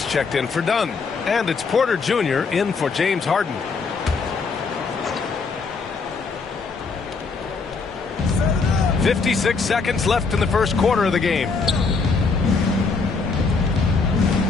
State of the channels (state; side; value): quieter; right; 4.6 dB